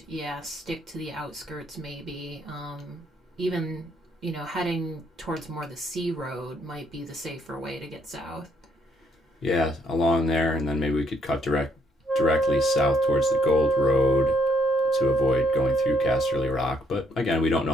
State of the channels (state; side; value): normal; both; correlation 0.70